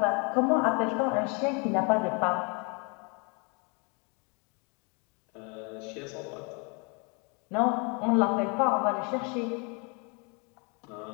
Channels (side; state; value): right; quieter; 33.2 dB